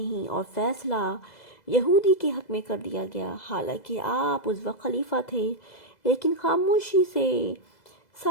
اور فیصلہ یہودی کے حق میں کر دیا گیا۔ حالانکہ آپ اس وقت خلیفہ تھے، لیکن خاموشی سے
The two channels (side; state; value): right; late; 2.0 ms